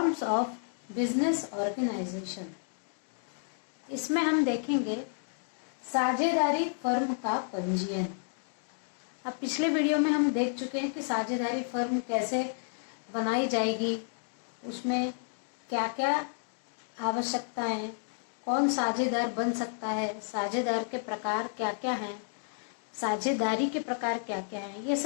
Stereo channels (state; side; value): silent; right; digital silence